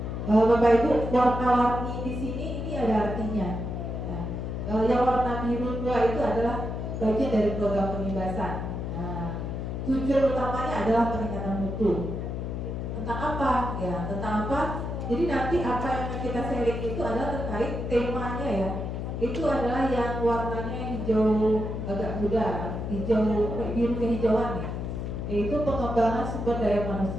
Bapak Ibu, warna-warni di sini ini ada artinya. Ya. Yang warna biru tua itu adalah bagian dari program pengibasan. Nah, tujuan utamanya adalah peningkatan mutu. Tentang apa? Ya, tentang apa? Jadi nanti apa yang kita sharing itu adalah terkait temanya ya. Itu adalah yang warnanya hijau agak muda, hijau biru kehijauan ya. Yaitu pengembangan sumber daya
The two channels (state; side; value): noise; left; hum, 4 dB below the sound